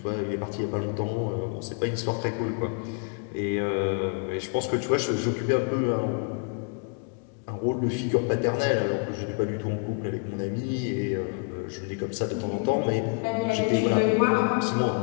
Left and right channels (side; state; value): right; quieter; 36.2 dB